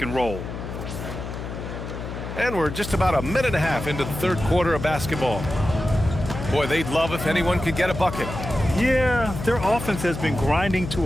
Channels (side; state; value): left; noise; hum, 8 dB below the sound